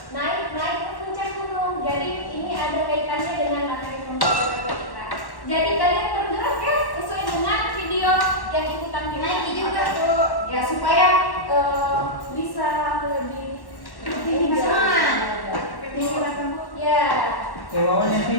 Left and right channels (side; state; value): right; late; 1.1 ms